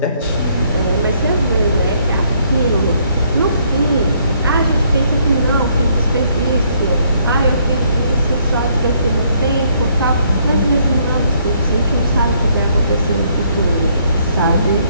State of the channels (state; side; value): inverted; both; correlation -0.68